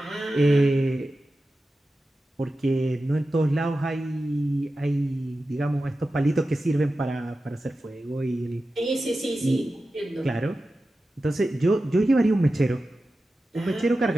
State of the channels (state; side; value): normal; both; correlation 0.93